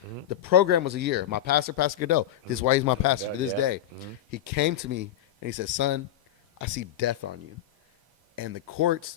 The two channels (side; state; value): right; quieter; 11.4 dB